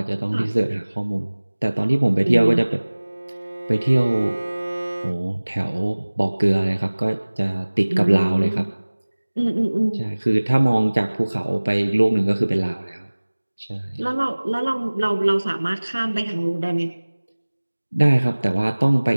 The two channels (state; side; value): inverted; both; correlation -1.00